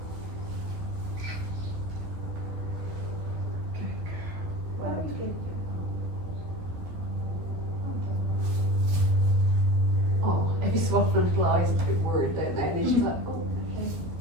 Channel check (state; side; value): late; left; 12 ms